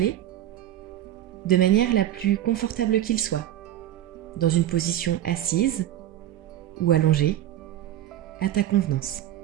de manière la plus confortable qu'il soit, dans une position assise ou allongée, à ta convenance.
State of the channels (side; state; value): left; quieter; 12.5 dB